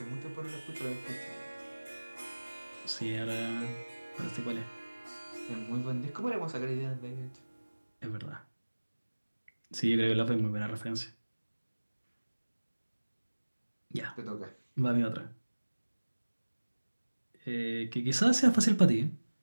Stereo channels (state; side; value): inverted; both; correlation -1.00